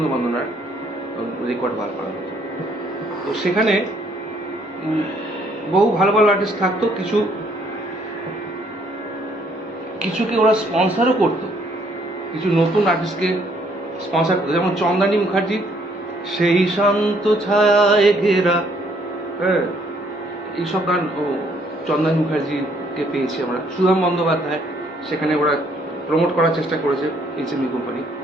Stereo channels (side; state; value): both; normal; correlation 0.66